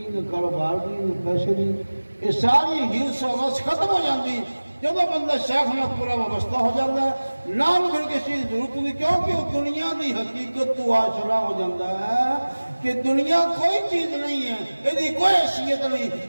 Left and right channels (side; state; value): both; inverted; correlation -1.00